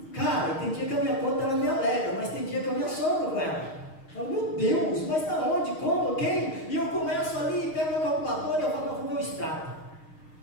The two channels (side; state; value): right; late; 6.4 ms